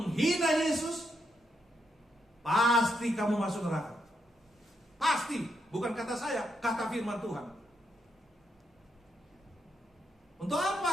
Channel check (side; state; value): both; normal; correlation 0.80